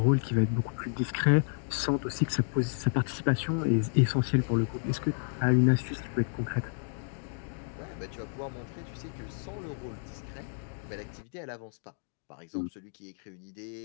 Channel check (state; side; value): silent; right; digital silence